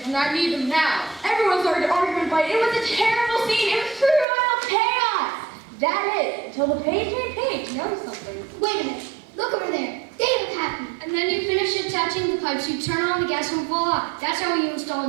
and I need them now. Everyone started arguing, but it was a terrible scene. It was pure royal chaos. That is, until the page made page noticed something. Wait a minute, look over there. They look happy. And then you finish attaching the pipes, you turn on the gas and voila. That's how you install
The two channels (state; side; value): drops out; left; at 4.2 s